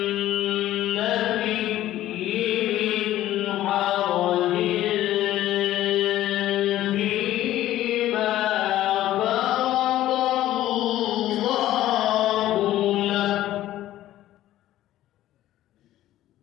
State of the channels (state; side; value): quieter; right; 13.9 dB